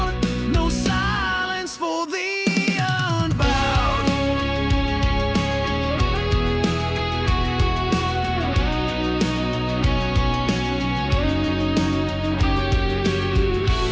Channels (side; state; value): both; identical; correlation 1.00